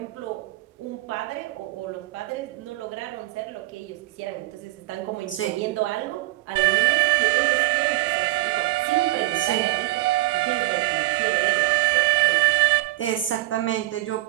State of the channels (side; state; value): left; quieter; 18.7 dB